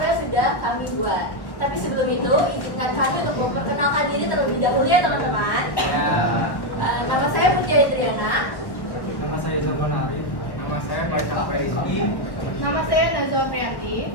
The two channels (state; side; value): late; right; 1.1 ms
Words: yang sudah kami buat. Tapi sebelum itu, izinkan kami untuk memperkenalkan diri terlebih dahulu ya teman-teman. Nama saya Mutiara Triana. Nama saya Zaman Arif. Nama saya Faisal Rizky. Nama saya Nazwa Priyanti.